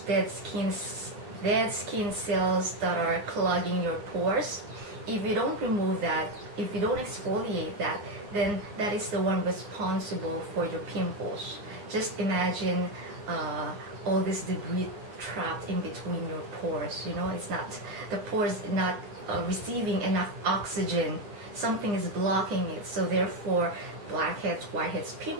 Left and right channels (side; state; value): left; late; 9.8 ms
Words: dead skin cells that are clogging your pores. If you don't remove that, if you don't exfoliate that, then that is the one responsible for your pimples. Just imagine all this debris trapped in between your pores. It's not, the pores not receiving enough oxygen. Something is blocking it, so therefore blackheads, whiteheads,